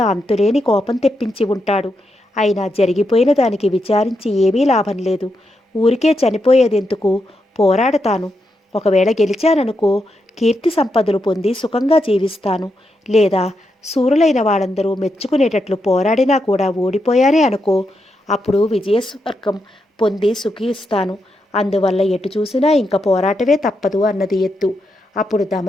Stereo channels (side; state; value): both; normal; correlation 0.83